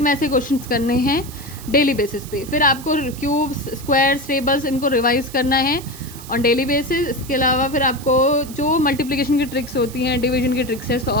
में से क्वेश्चंस करने हैं डेली बेसिस पे. फिर आपको क्यूब्स, स्क्वायर्स, टेबल्स इनको रिवाइज करना है ऑन डेली बेसिस. इसके अलावा फिर आपको जो मल्टीप्लिकेशन की ट्रिक्स होती हैं, डिवीजन की ट्रिक्स है,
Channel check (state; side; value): noise; right; hiss, 16 dB below the sound